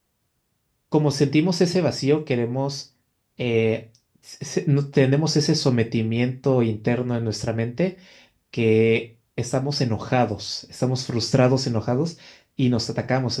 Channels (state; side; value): identical; both; correlation 1.00